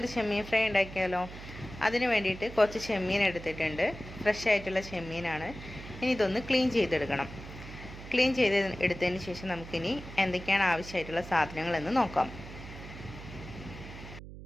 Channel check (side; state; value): right; noise; hum, 13 dB below the sound